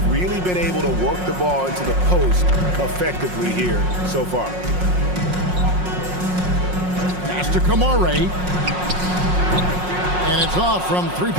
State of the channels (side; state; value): left; late; 5.5 ms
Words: really been able to work the ball into the post effectively here so far. Pass to Kamare. And it's off from